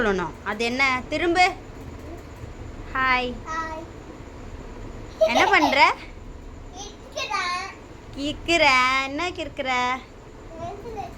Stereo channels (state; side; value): identical; both; correlation 1.00